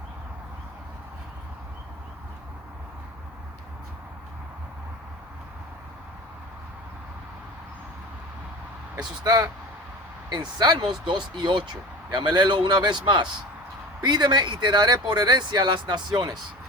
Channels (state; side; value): normal; both; correlation 0.34